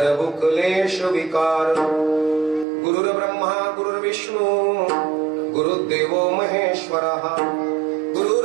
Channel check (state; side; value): drops out; left; at 2.7 s